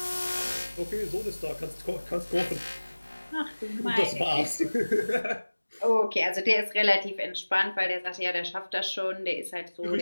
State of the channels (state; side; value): inverted; both; correlation -1.00